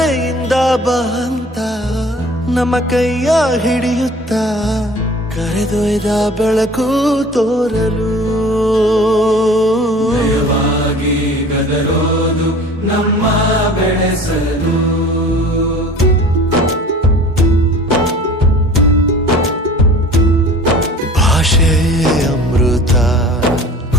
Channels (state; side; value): normal; both; correlation 0.45